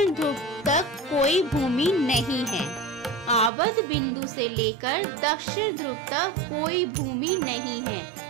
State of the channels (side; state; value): left; drops out; at 3.5 s